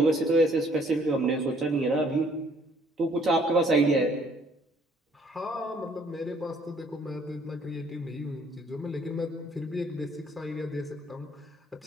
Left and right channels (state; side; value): normal; both; correlation 0.62